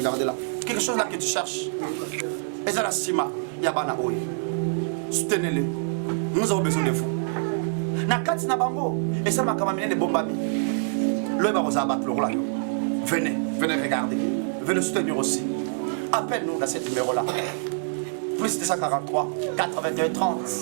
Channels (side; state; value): left; silent; digital silence